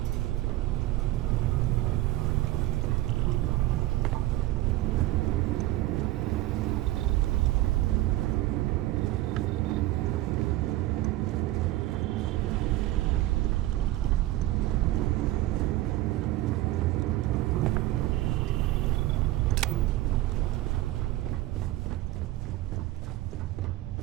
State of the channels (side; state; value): left; quieter; 16.6 dB